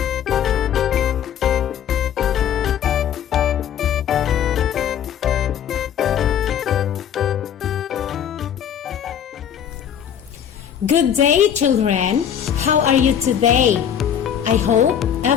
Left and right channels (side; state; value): right; quieter; 9.0 dB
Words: Good day, children. How are you today? I hope